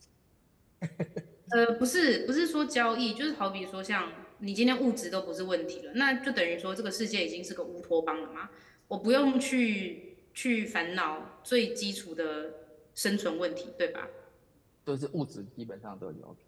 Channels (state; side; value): identical; both; correlation 1.00